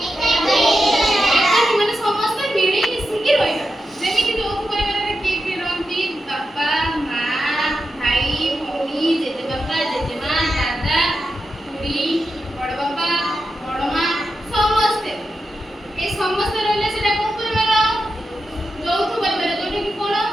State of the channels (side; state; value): both; normal; correlation 0.89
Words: ଏକାଠି ମାନେ ସମସ୍ତେ ମିଳି ମିଶିକି ରହିବା। ଯେମିତି ଯୌଥ ପରିବାରରେ କିଏ କିଏ ରହନ୍ତି? ବାପା, ମା, ଭାଇ, ଭଉଣୀ, ଜେଜେବାପା, ଜେଜେମା, ଦାଦା, ଖୁଡୀ, ବଡ ବାପା, ବଡ ମା, ସମସ୍ତେ। ଏ ସମସ୍ତେ ରହିଲେ ସେଟା କୋଉ ପରିବାର? ଯୌଥ ପରିବାର। ଯୋଉଟା କି କଣ?